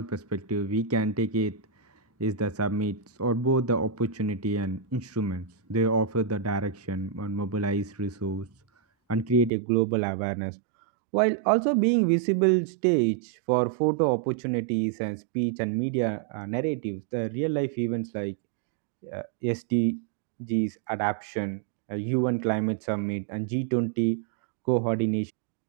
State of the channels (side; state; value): left; drops out; at 9.5 s